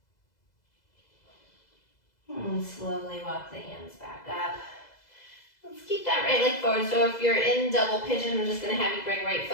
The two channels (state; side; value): late; right; 2.0 ms